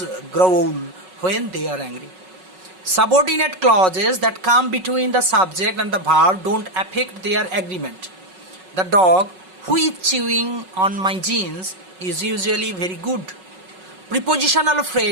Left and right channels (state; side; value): late; left; 5.4 ms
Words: growl when they are angry. Subordinate clauses that come between the subject and the verb don't affect their agreement. The dog who is chewing on my jeans is usually very good. Prepositional